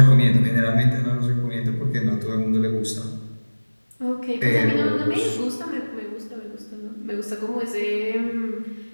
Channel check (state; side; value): inverted; both; correlation -1.00